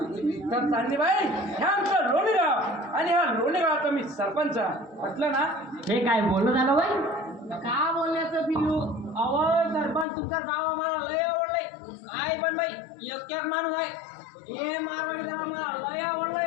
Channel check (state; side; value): drops out; right; at 10.1 s